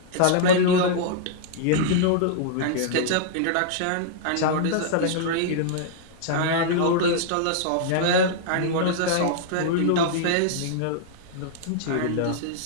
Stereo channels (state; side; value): different; both; correlation -0.01